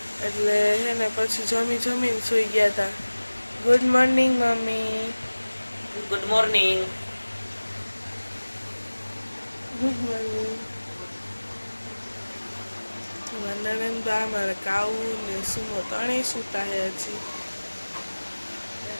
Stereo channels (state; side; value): inverted; both; correlation -1.00